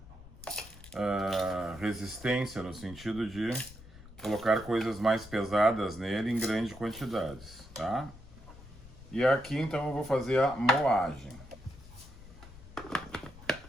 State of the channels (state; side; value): noise; left; rumble, 18 dB below the sound